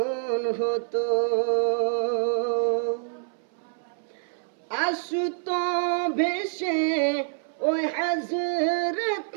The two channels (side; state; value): left; silent; 60 dB below the other